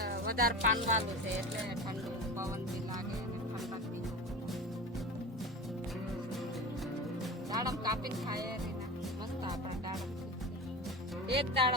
વધારે પાનવાળું છે એટલે ઠંડુ પવન બી લાગે અને ઠંડક બી દાડમ કાપીને ખાય રીના મસ્ત આપણે દાડમ એક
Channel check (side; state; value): both; normal; correlation 0.29